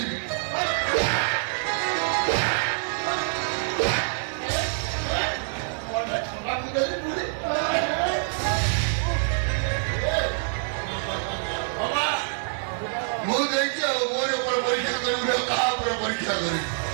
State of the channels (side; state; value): left; silent; 59 dB below the other